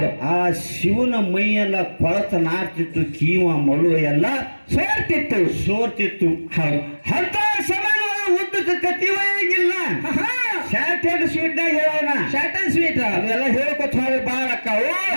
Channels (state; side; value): inverted; both; correlation -1.00